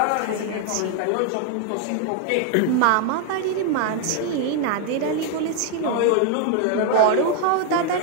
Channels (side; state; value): both; different; correlation 0.00